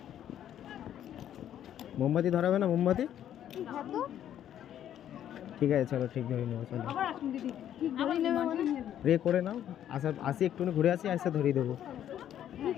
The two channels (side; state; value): right; quieter; 10.7 dB